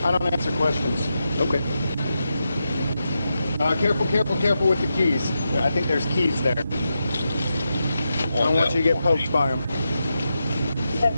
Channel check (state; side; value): inverted; both; correlation -0.87